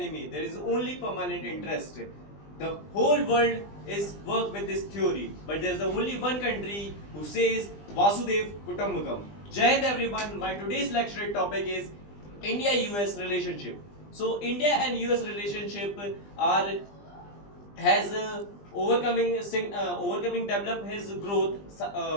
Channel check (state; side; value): late; right; 20 ms